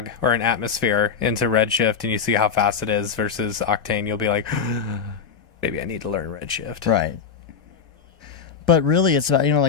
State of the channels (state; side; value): quieter; right; 6.4 dB